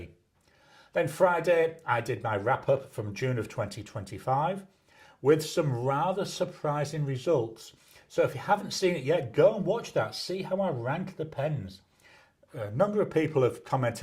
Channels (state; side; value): identical; both; correlation 1.00